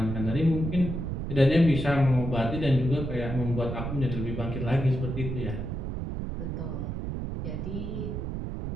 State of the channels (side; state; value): right; noise; rumble, 4 dB below the sound